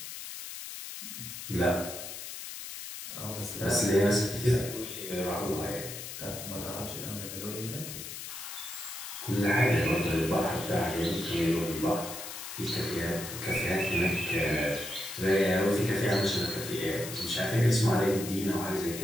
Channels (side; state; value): left; noise; hiss, 9 dB below the sound